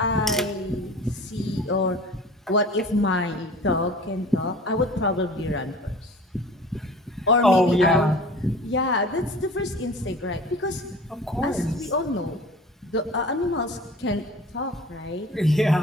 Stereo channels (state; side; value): normal; both; correlation 0.42